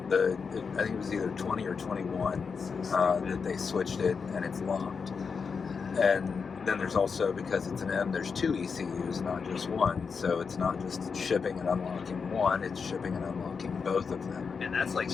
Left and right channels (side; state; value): right; quieter; 5.5 dB